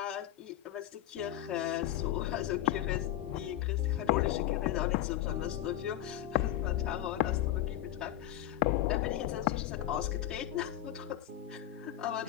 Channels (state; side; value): quieter; right; 13.0 dB